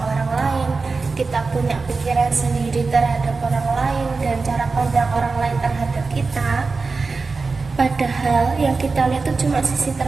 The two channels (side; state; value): left; quieter; 4.2 dB